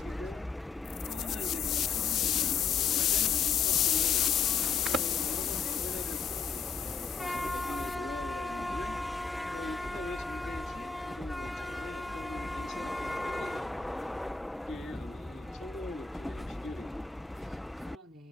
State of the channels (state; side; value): quieter; right; 5.8 dB